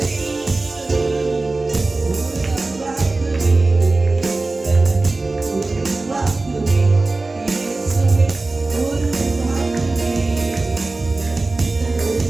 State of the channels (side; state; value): left; quieter; 3.3 dB